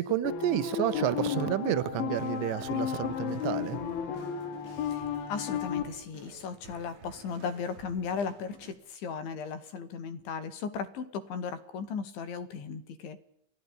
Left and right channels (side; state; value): right; late; 15 ms